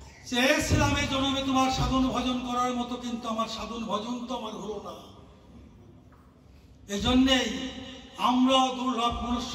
চেয়েছিলাম এই জন্মে তোমার সাধন ভজন করার মতো, কিন্তু আমার সাধন ভজন তো আমার হলো না। এজন্যেই আমরা দুর্লভ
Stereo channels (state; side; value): identical; both; correlation 1.00